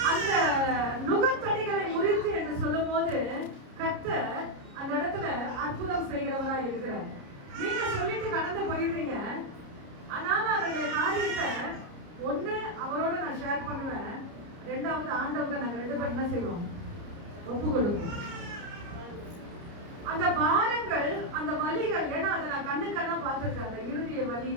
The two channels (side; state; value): left; late; 30 ms